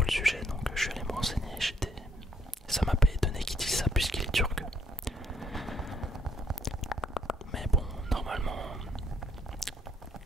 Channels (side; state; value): both; normal; correlation 0.69